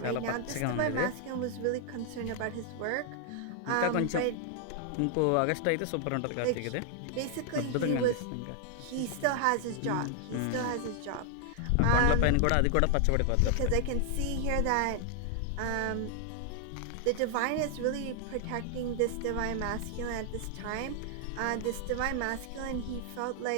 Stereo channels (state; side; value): different; both; correlation 0.00